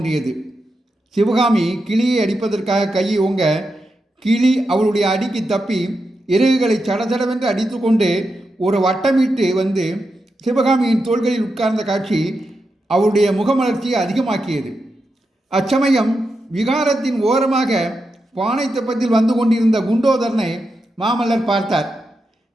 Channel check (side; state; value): both; normal; correlation 0.87